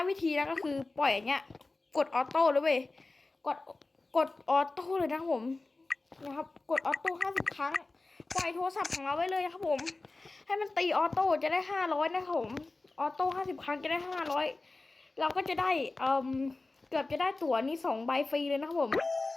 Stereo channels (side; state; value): right; quieter; 3.3 dB